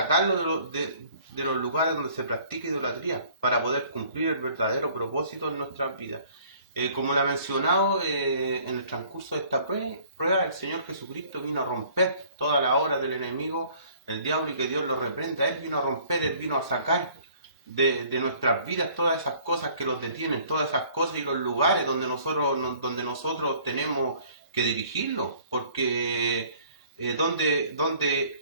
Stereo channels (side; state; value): both; inverted; correlation -0.56